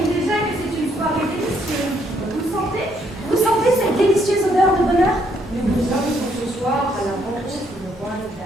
déjà que c'est une soirée délicieuse. Vous sentez cette délicieuse odeur de bonheur? Nous vous invitons ce soir à la rencontre du roi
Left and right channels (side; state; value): both; normal; correlation 0.71